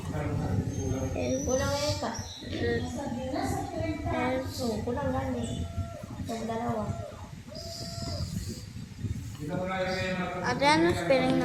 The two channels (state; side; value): identical; both; correlation 1.00